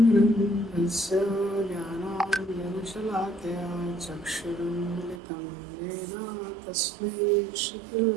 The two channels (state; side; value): drops out; left; at 5.2 s